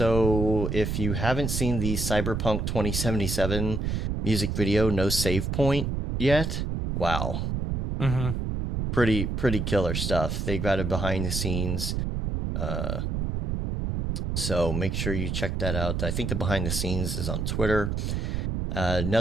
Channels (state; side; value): noise; right; rumble, 1 dB below the sound